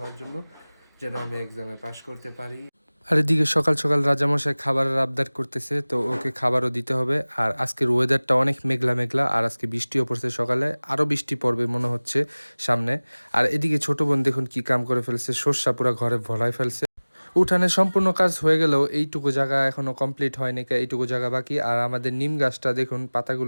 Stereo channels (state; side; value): inverted; both; correlation -1.00